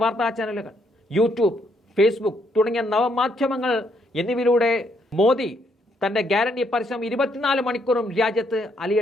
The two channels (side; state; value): both; normal; correlation 0.73